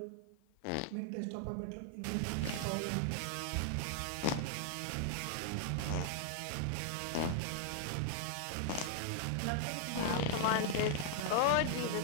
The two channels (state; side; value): different; both; correlation -0.01